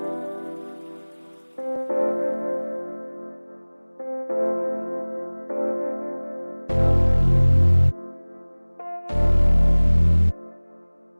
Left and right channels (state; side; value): inverted; both; correlation -1.00